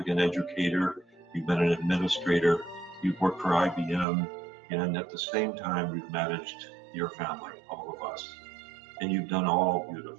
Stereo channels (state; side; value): drops out; left; at 4.0 s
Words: educator, you've been an administrator, you've worked for IBM, and at the same time, you've managed your family, all of us. And you've done all